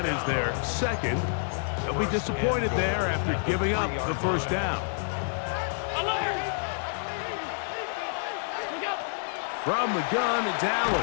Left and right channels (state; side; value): silent; right; 59 dB below the other